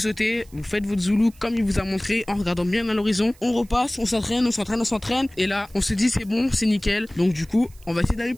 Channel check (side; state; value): right; noise; hiss, 27 dB below the sound